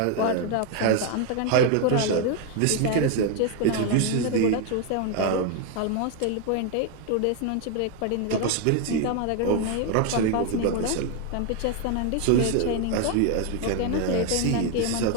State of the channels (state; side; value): different; both; correlation 0.01